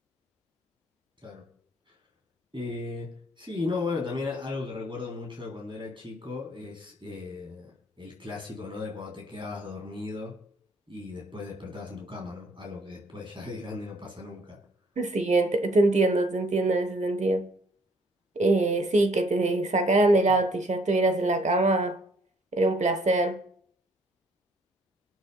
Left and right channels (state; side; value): normal; both; correlation 0.63